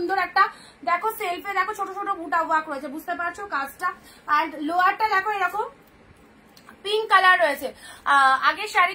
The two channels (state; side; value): identical; both; correlation 1.00